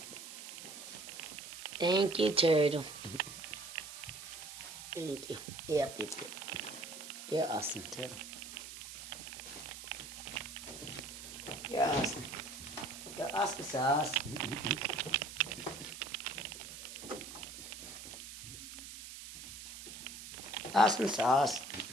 Thank you, turtle. Thank you. Yep. You're awesome, turtle. You're awesome. You're awesome sauce. Awesome sauce.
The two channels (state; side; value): noise; right; hiss, 11 dB below the sound